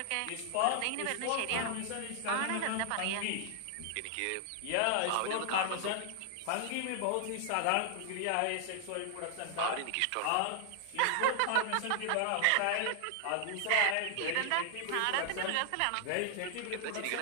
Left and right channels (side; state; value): both; different; correlation -0.01